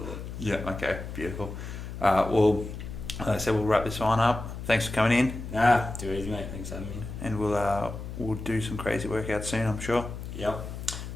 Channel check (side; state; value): left; noise; hum, 8 dB below the sound